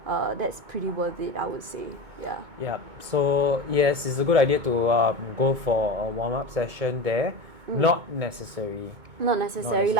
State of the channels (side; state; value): left; late; 2.2 ms